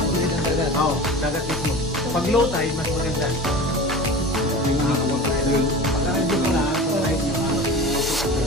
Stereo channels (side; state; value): both; normal; correlation 0.34